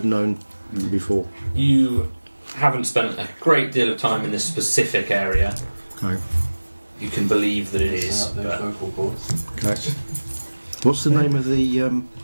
known before. You haven't spent a great deal of time in this specific area. Okay. You can believe that it is. Set up those But vocal cords. Okay. What's the name of the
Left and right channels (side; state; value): both; inverted; correlation -1.00